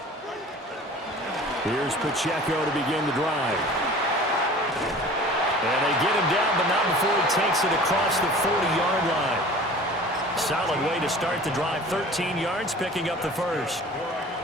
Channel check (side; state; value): both; normal; correlation 0.43